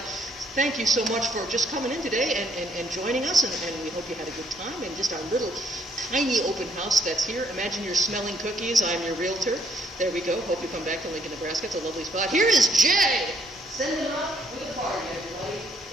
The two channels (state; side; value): normal; both; correlation 0.67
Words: Thank you so much for just coming in today and joining us, and we hope you had a good time in just our little tiny open house that's here. Imagine you're smelling cookies. I'm your realtor. There we go. Hope you come back to Lincoln, Nebraska. It's a lovely spot. Here is Jay! Send them up with a party, everybody.